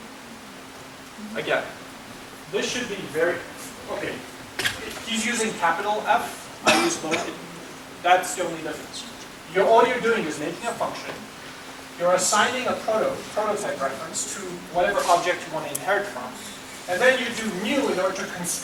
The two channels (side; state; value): both; identical; correlation 1.00